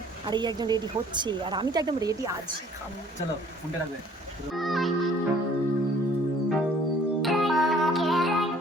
আর এই একজন রেডি হচ্ছে আর আমি তো একদম রেডি আছি। চলো ফোনটা রাখবে।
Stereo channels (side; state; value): both; normal; correlation 0.56